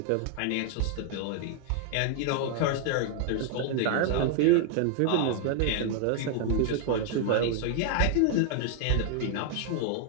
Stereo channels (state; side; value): different; both; correlation 0.00